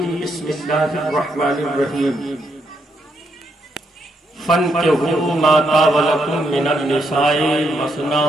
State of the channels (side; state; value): both; normal; correlation 0.77